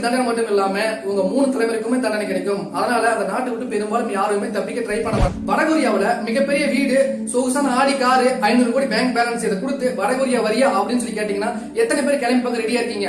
தண்டனை மட்டும் இல்லாம உங்க 3 தலைமுறைக்குமே தண்டனை கிடைக்கும். அதனால அந்த நாட்டை விட்டு பெரும்பாலும் யாருமே தப்பிக்க ட்ரை பண்ண மாட்டாங்க. வடகொரியாவுல மிகப்பெரிய வீடு, சொகுசான ஆடி காரு, 500 கோடி பேங்க் பேலன்ஸ் இதை கொடுத்து வடகொரியா வரியா அப்படின்னு சொல்லி கேட்டீங்கன்னா எத்தனை பேர் கிளம்பி பார்க்க ரெடியா இருக்கீங்க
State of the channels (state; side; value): identical; both; correlation 1.00